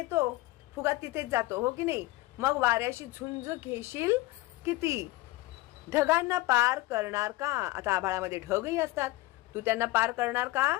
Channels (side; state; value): right; quieter; 19.2 dB